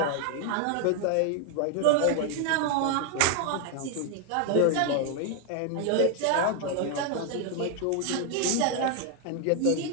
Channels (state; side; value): different; both; correlation 0.00